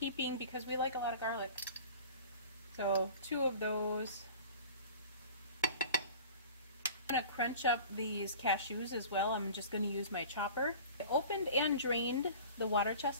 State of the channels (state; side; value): inverted; both; correlation -0.41